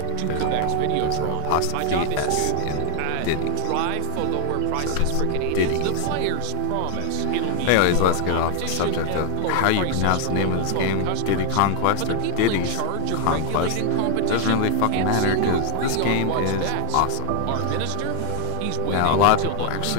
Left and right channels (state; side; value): different; both; correlation 0.00